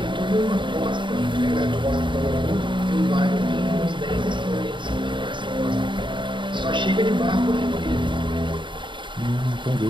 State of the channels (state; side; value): late; left; 0.23 ms